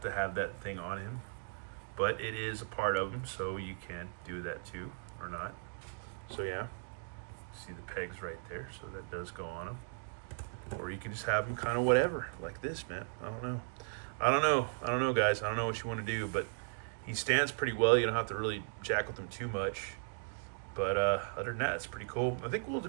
to have that thing on him. But it is a part of him, so you can do that, too. Or not. So, yeah. See the pegs right there, so that does go on them. Or you can just have them kind of whatever, like this, man. I don't know, guys. I don't know what you want to do, but he stands pretty well. You don't have to really jack with him too much. But other than that, it's pretty cool. I think we'll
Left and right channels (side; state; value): left; silent; digital silence